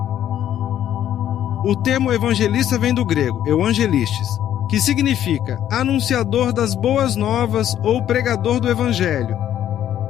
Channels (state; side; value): quieter; right; 11.1 dB